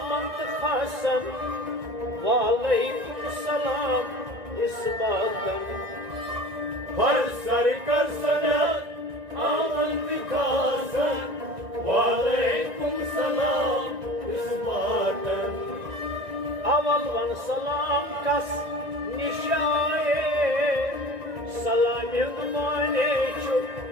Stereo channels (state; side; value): late; left; 1.9 ms